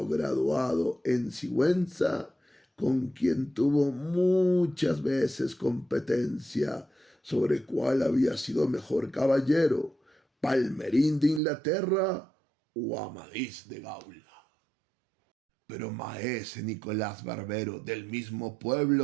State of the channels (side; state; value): left; drops out; at 11.4 s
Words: graduado en Sigüenza, con quien tuvo muchas veces competencia sobre cuál había sido mejor caballero, Palmerín de Inglaterra o Amadís de Gaula. Pero maese Nicolás Barbero, del mismo